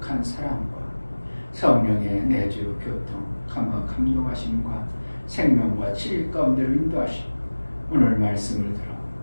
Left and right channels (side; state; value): both; inverted; correlation -1.00